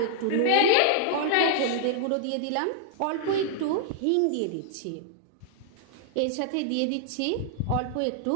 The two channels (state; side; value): different; both; correlation -0.01